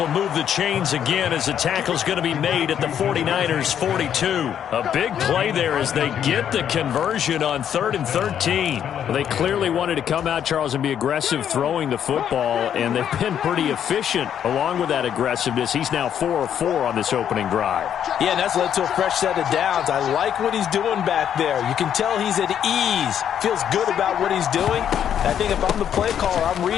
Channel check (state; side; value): quieter; right; 9.3 dB